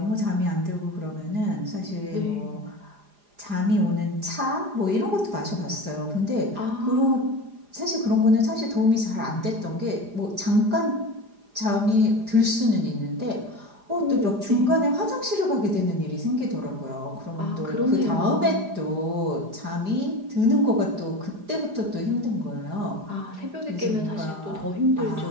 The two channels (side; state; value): left; late; 4.9 ms